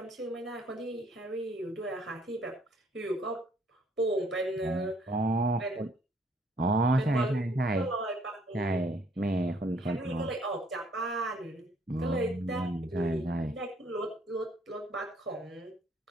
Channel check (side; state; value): both; normal; correlation 0.64